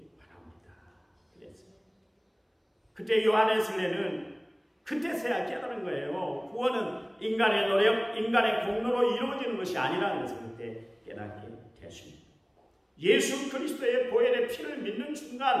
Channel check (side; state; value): both; identical; correlation 1.00